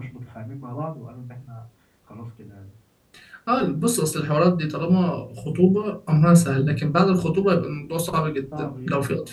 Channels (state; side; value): identical; both; correlation 1.00